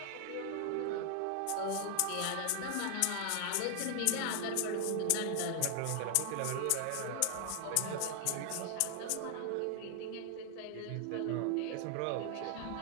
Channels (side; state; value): both; different; correlation 0.00